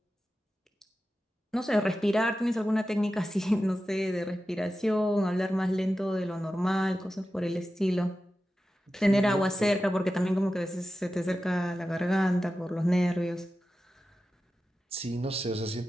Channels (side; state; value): both; normal; correlation 0.93